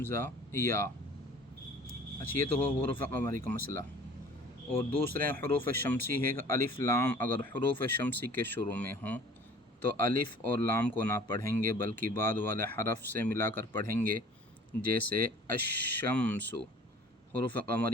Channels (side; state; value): both; normal; correlation 0.49